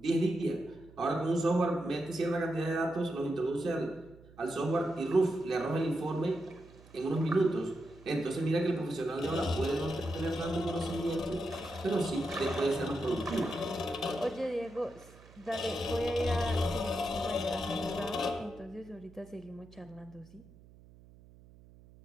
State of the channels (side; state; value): right; noise; hum, 23 dB below the sound